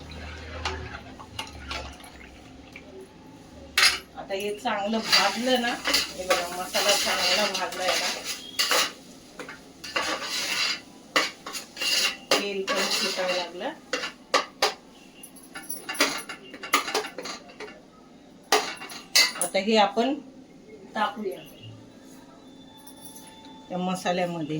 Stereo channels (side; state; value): both; identical; correlation 1.00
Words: आता हे चांगलं भाजलं ना, हे बघा मसाला चांगला भाजलाय ना, तेल पण सुटायला लागलं. आता हे आपण टाकूया त्या